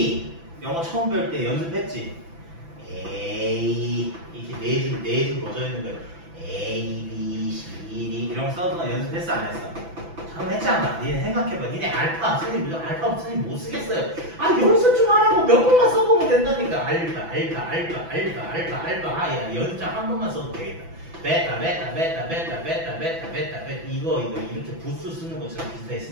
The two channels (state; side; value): late; left; 6.0 ms